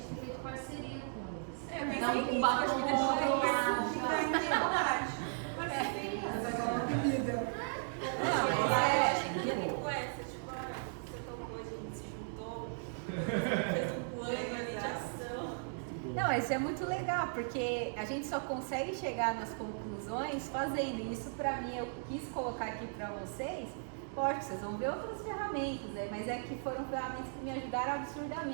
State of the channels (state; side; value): silent; left; digital silence